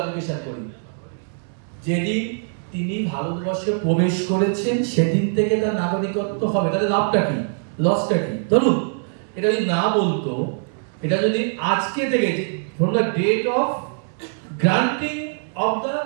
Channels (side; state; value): left; silent; 64 dB below the other